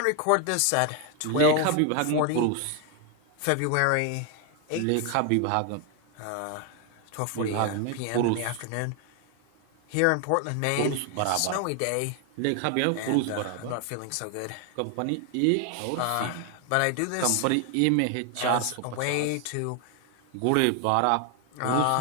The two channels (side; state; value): both; different; correlation 0.01